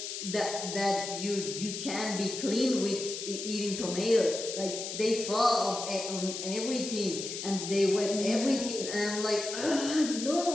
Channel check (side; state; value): left; noise; hiss, 6 dB below the sound